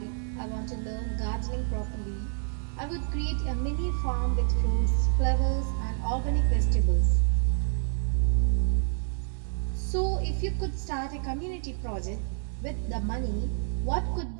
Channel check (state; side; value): silent; left; digital silence